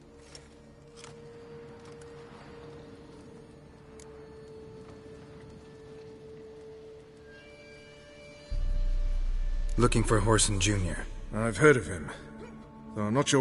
Looking for Whoreson Jr. I've heard of him. Though I'm not sure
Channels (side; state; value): both; identical; correlation 1.00